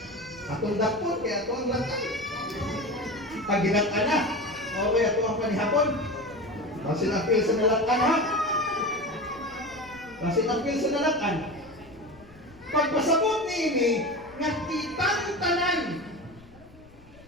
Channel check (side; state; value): left; noise; rumble, 24 dB below the sound